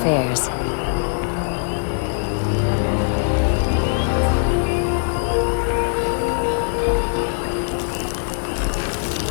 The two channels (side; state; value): right; silent; digital silence